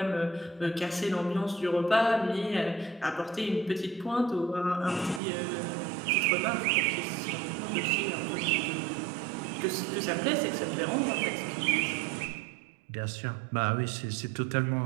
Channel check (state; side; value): drops out; left; at 5.2 s